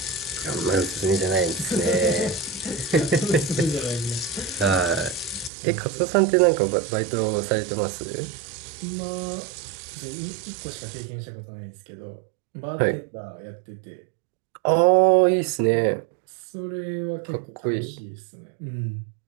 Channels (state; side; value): drops out; left; at 5.5 s